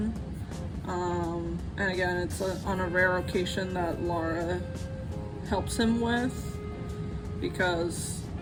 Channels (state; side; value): identical; both; correlation 1.00